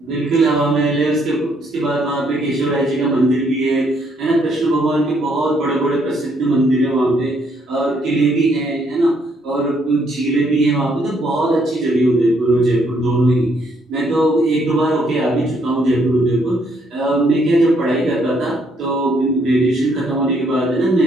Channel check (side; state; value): both; normal; correlation 0.70